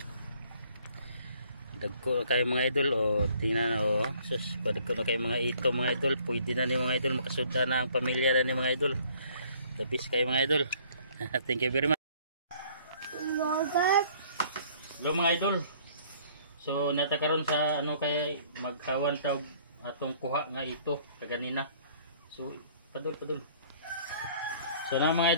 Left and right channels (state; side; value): inverted; both; correlation -0.58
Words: Dagko na kayo mga idol tingnan na sus dagko na kayo mga ito mga idol, pwede na ni mga idol makasuda na ang pamilya na ni mga idol. The best kayo mga idol. Thank you very much. Hello mga idol. So natakaron sa ano kay magkawan sa atong kuha nga ito kaganina. So padul. So na mga